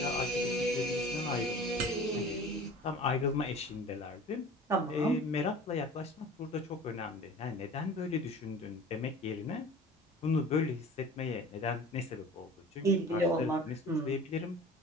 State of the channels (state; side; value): normal; both; correlation 0.42